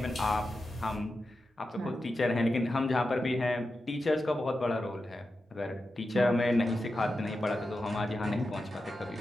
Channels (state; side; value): normal; both; correlation 0.91